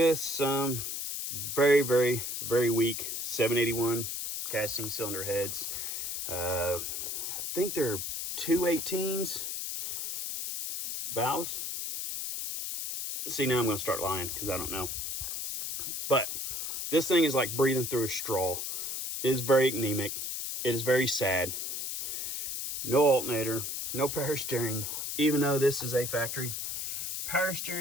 some very, very, very weak 781 casting cylinder heads. I think they're 218s valves. See, now I'm going to start lying because I don't know. But this thing is like breathing through a straw. It is very anemic. It is very sad. No alternator, no power steering, even though this is a factory power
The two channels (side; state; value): left; noise; hiss, 4 dB below the sound